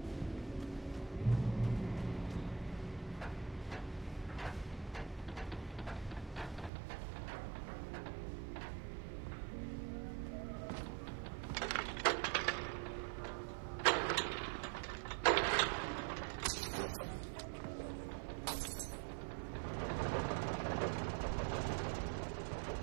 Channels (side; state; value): left; drops out; at 6.7 s